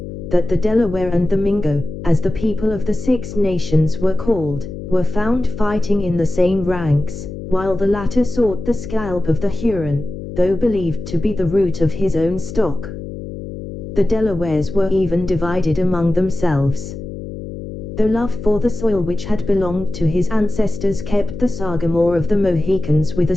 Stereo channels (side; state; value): left; noise; hum, 10 dB below the sound